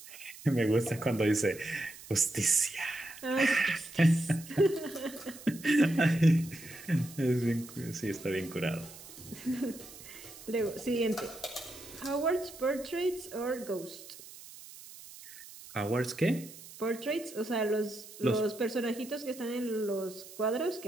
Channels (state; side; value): noise; right; hiss, 17 dB below the sound